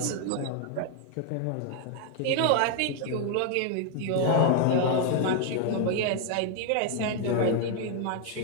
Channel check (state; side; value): different; both; correlation 0.00